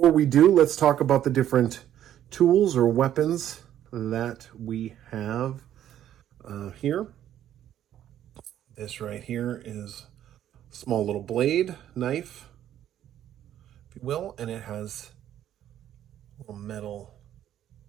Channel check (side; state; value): left; quieter; 11.3 dB